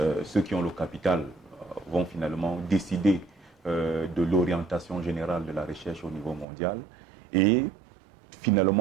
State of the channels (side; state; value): left; drops out; at 6.5 s